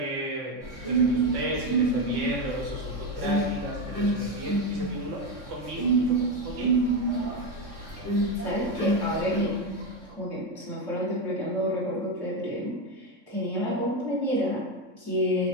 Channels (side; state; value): left; late; 3.6 ms